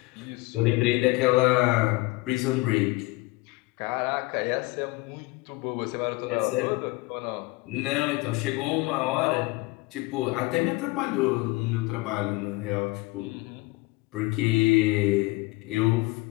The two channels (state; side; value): quieter; right; 22.9 dB